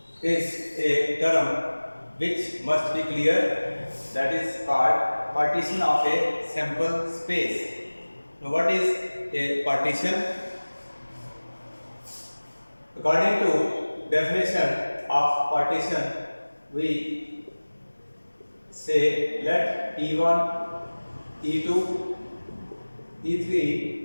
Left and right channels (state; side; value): inverted; both; correlation -1.00